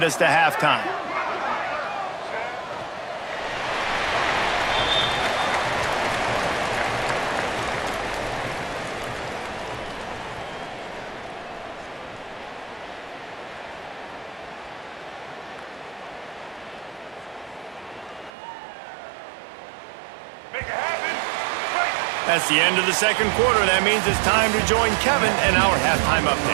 us to halftime. That's the end of the second quarter. That means it's time to join Kevin and our halftime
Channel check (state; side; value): drops out; left; at 18.3 s